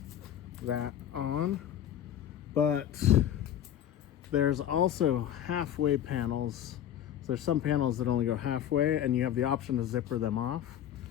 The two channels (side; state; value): right; quieter; 10.7 dB